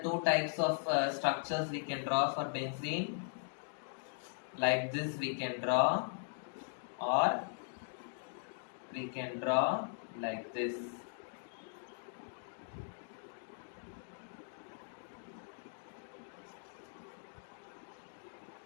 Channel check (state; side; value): silent; right; digital silence